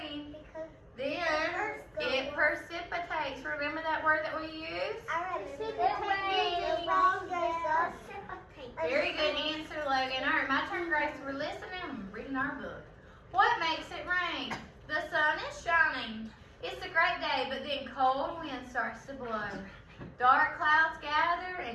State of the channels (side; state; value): both; identical; correlation 1.00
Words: word that we use? Very good answer, Logan. All right, my turn, Grace. We're listening and reading our book. What makes it rain? The sun is shining. It's a great day, but then cold wind starts to blow. Dark clouds gather